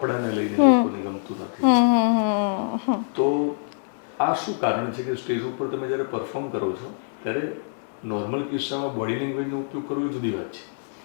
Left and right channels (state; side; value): silent; right; 62 dB below the other